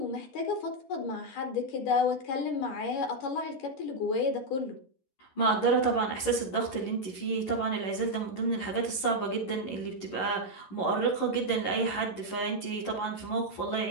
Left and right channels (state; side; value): late; right; 11 ms